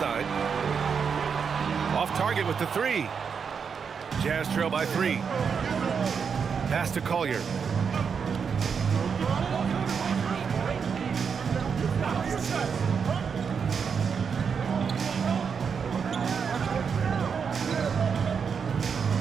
Off target with the 3. Jazz trail by 3. Pass to Collier.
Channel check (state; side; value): quieter; left; 6.3 dB